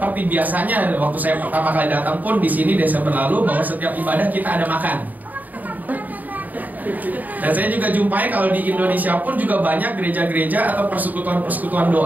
biasanya waktu saya pertama kali datang pun di sini Desember lalu, bahwa setiap ibadah kita ada makan. Dan saya juga jumpai kalau di Indonesia pun juga banyak gereja-gereja atau persekutuan-persekutuan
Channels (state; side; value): late; left; 0.082 ms